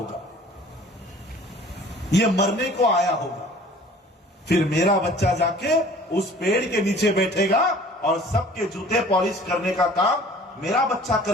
ये मरने को आया होगा। फिर मेरा बच्चा जाके उस पेड़ के नीचे बैठेगा और सबके जूते पॉलिश करने का काम मेरा बच्चा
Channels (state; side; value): normal; both; correlation 0.49